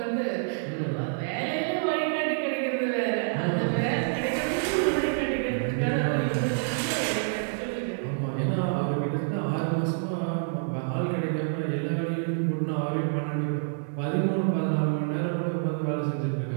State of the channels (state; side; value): silent; left; 60 dB below the other